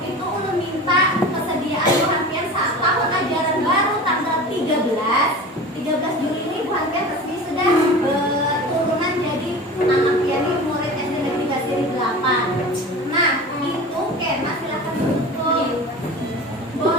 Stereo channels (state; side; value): normal; both; correlation 0.35